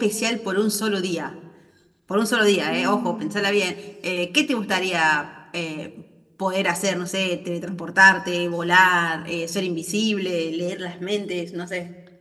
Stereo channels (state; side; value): identical; both; correlation 1.00